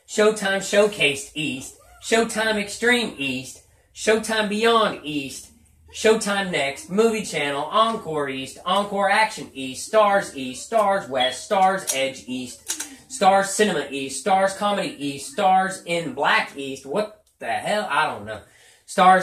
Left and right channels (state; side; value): identical; both; correlation 1.00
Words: Showtime Showcase East, Showtime Extreme East, Showtime Beyond East, Showtime Next, Movie Channel, Encore East, Encore Action East, Stars East, Stars West, Stars Edge East, Stars Cinema East, Stars Comedy East, Stars in Black East, what the hell? I don't know.